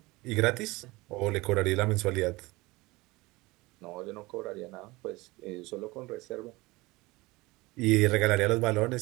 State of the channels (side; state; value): left; quieter; 22.1 dB